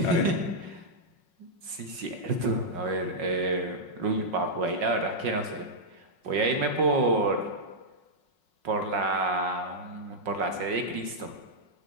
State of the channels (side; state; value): left; late; 5.5 ms